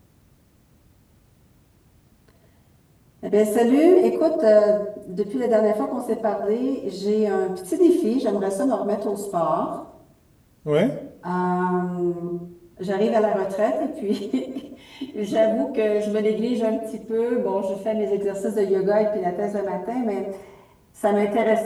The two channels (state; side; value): identical; both; correlation 1.00